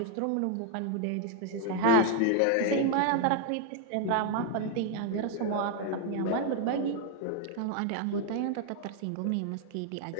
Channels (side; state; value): both; different; correlation 0.00